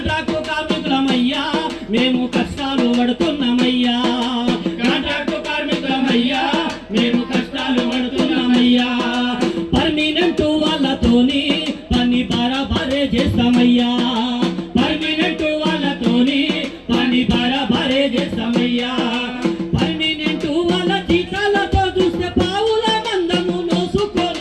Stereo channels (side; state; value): both; identical; correlation 1.00